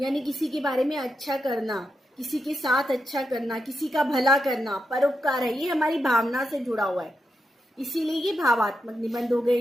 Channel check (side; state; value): both; normal; correlation 0.86